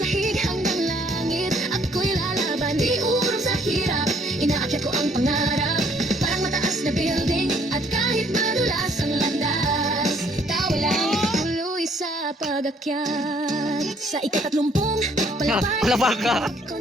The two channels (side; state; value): both; normal; correlation 0.64